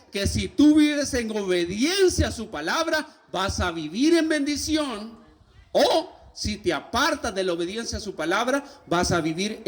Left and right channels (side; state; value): both; identical; correlation 1.00